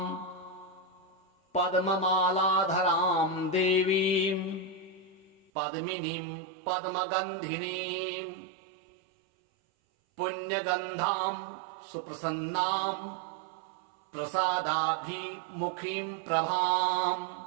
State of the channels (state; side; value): drops out; left; at 5.5 s